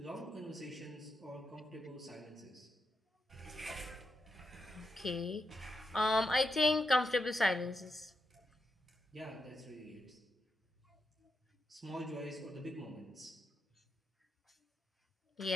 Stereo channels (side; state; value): both; normal; correlation 0.85